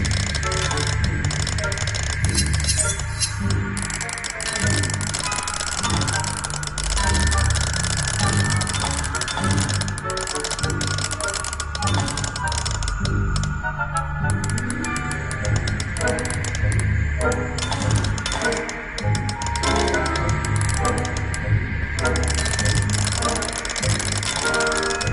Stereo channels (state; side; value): identical; both; correlation 1.00